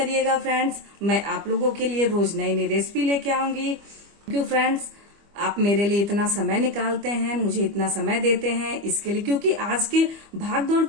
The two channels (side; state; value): left; late; 25 ms